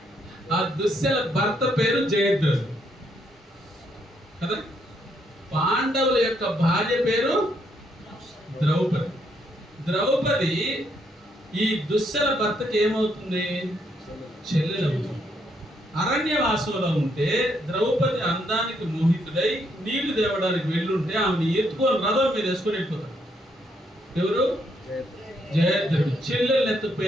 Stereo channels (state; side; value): normal; both; correlation 0.73